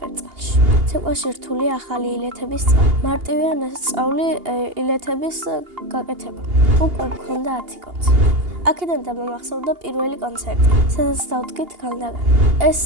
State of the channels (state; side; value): late; left; 2.8 ms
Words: ცეკვაში რთულია ახალი ილეთების სწავლა. მარტივია ნასწავლი ილეთების გაკეთება. უკვე მქონდა 10 კონცერტი. აქედან დამამახსოვრდა პირველი კონცერტი, სადაც დავდგით განდაგან. ეს